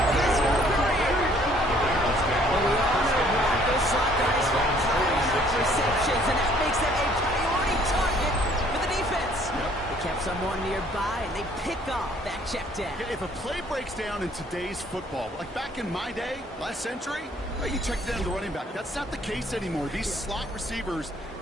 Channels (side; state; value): both; normal; correlation 0.60